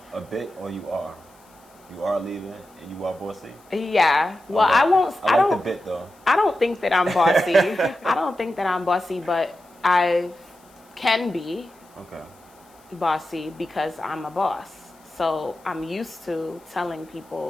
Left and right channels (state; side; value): noise; left; hiss, 30 dB below the sound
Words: a bit, or you are? You are a leader and you are bossy? Yeah. Well, I won't. I like the bit though. I don't think that I'm bossy. I don't think that I'm bossy, but I can be bossy because I'm a boss. So I'm used to telling